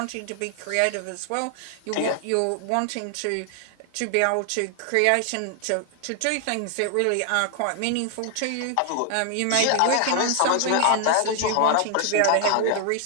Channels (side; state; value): both; different; correlation 0.00